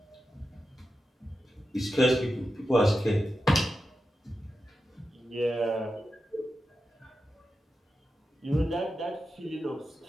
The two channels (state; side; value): normal; both; correlation 0.90